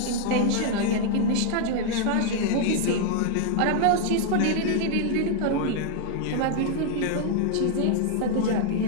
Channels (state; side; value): different; both; correlation 0.00